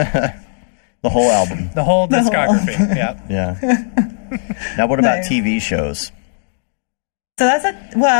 The whole album. The whole discography. Yeah. Yeah. Now, what about Nice. TV shows? So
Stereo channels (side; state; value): right; silent; digital silence